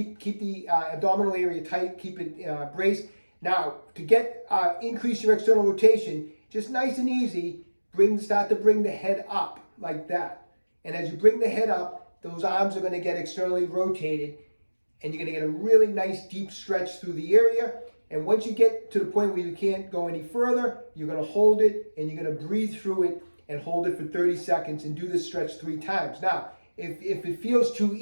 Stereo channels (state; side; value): inverted; both; correlation -1.00